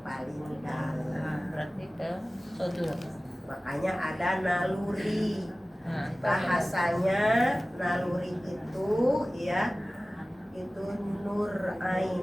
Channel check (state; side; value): normal; both; correlation 0.97